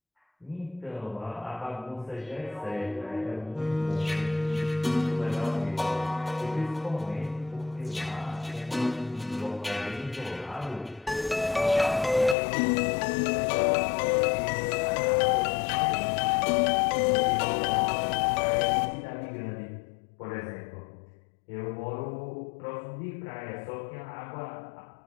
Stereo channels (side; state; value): right; drops out; at 12.4 s